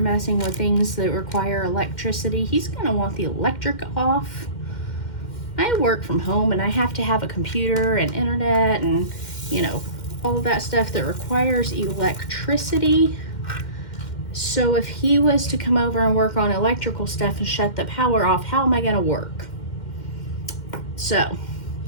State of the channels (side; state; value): right; late; 2.1 ms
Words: with things that require electricity, he's going to want the electric off. I work from home, and I have to have a computer and internet and, you know, all of that stuff that requires electricity. So if he was to come over and work on electrical stuff and shut the power off, how am I going to work? So